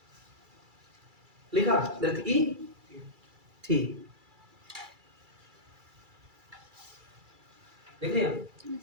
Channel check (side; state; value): left; late; 2.3 ms